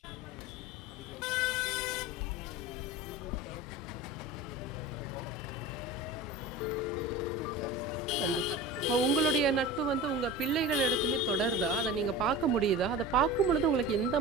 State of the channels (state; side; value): normal; both; correlation 0.33